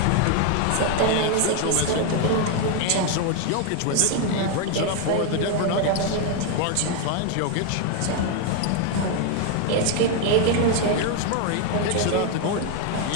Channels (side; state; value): both; different; correlation 0.01